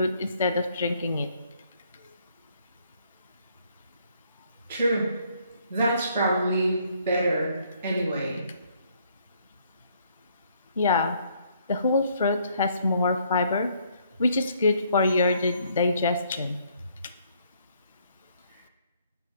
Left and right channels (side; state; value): both; inverted; correlation -0.67